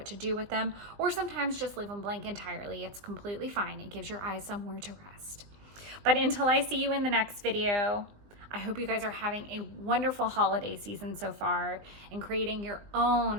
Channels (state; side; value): late; left; 20 ms